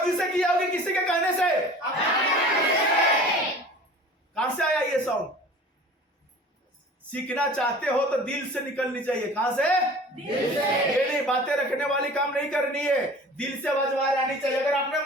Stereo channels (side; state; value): both; normal; correlation 0.43